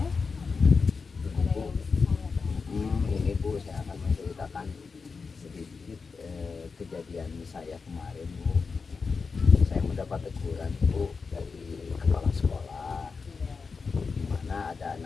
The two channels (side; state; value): right; quieter; 4.9 dB